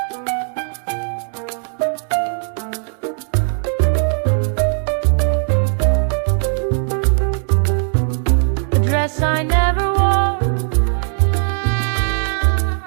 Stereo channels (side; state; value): left; silent; 63 dB below the other